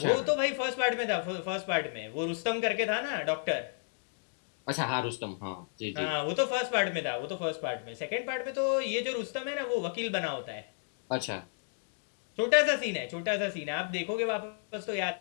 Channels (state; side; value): silent; right; digital silence